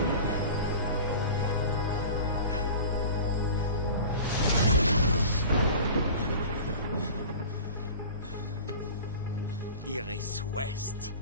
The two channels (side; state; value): both; inverted; correlation -0.37